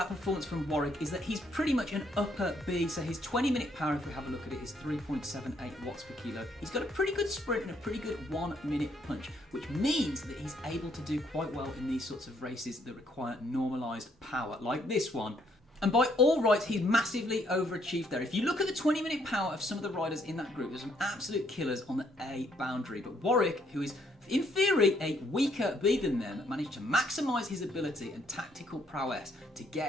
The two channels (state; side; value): normal; both; correlation 0.69